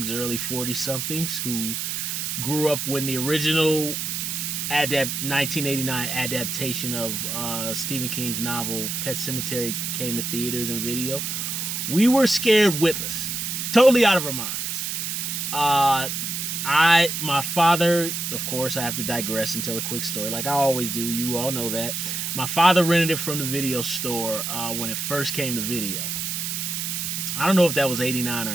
early 40 somethings who grew up when the original 1989 adaptation of Stephen King's novel Pet Sematary came to theaters and video, we were scared witless, totally out of our minds. My father, of course, I have to digress and tell a quick story like I always do. You all know that. My father rented it from the video store when it first came to video. I don't know if that was 89 or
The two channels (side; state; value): right; noise; hiss, 3 dB below the sound